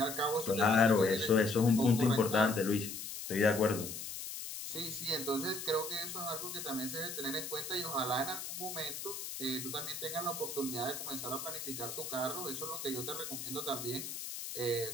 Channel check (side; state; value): left; noise; hiss, 7 dB below the sound